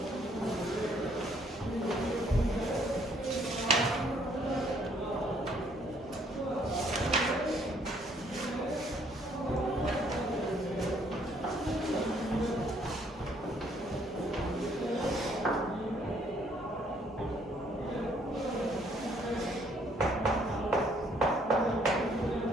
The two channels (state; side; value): normal; both; correlation 0.65